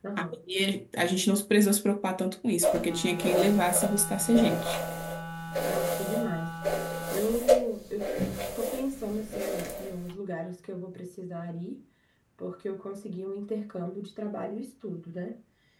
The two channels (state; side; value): identical; both; correlation 1.00